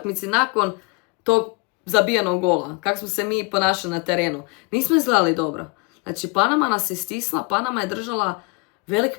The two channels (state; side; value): quieter; right; 29.4 dB